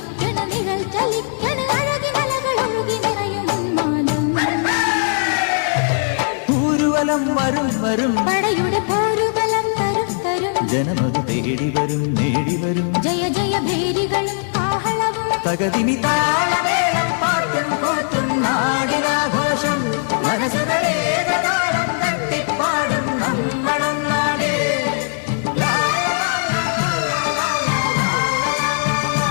നിഴൽ ചലിക്കണ് അഴകിനലകളൊഴുകി നിറയും പൂരുവലം വരും വരും പടയുടെ പോരുബലം തരും തരും ജനമത് തേടി വരും നേടി വരും ജയ ജയ ഭേരികളും ആഹളവും തകതിനി താളമേളം പാട്ടും കൂട്ടും നാടിനാഘോഷം മനസ്സുകളെ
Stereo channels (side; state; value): right; silent; digital silence